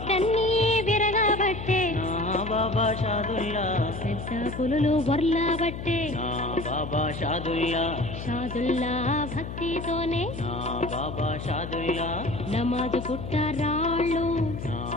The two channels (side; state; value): left; noise; hum, 8 dB below the sound